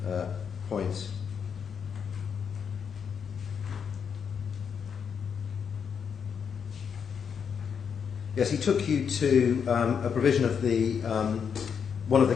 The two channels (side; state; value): right; quieter; 7.0 dB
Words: points. Yes, he took you to a provision of the one of the